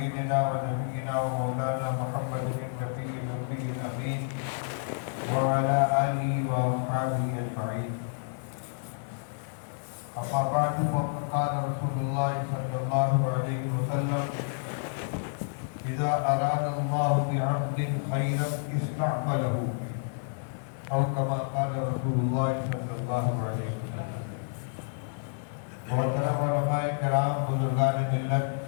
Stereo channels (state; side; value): silent; right; digital silence